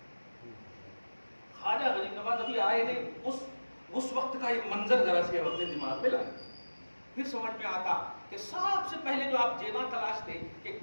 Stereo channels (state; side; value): inverted; both; correlation -1.00